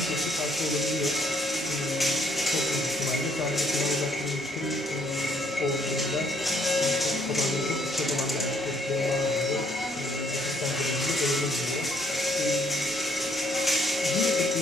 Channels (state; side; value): normal; both; correlation 0.67